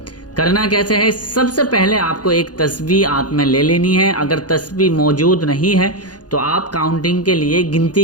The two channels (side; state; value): right; late; 0.69 ms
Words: کرنا کیسے ہے؟ سب سے پہلے آپ کو ایک تسبیح ہاتھ میں لے لینی ہے۔ اگر تسبیح موجود نہیں ہے تو آپ کاؤنٹنگ کے لیے،